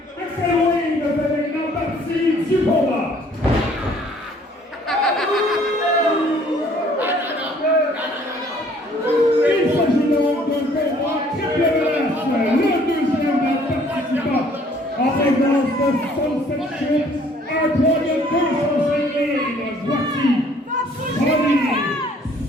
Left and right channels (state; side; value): normal; both; correlation 0.59